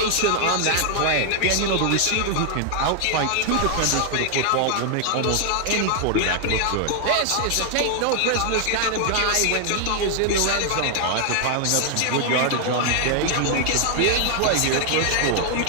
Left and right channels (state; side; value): different; both; correlation 0.00